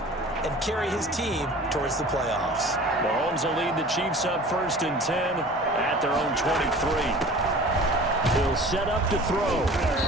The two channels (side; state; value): both; normal; correlation 0.43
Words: and carry his team towards the playoffs? Mahomes will lead the Chiefs up 1st and 10 at their own 23. He'll set up to throw.